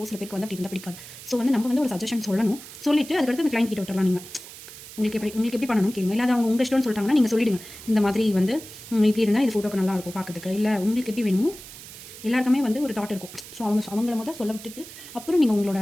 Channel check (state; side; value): noise; right; hiss, 15 dB below the sound